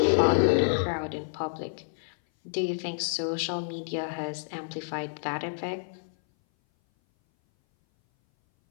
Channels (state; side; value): silent; right; 58 dB below the other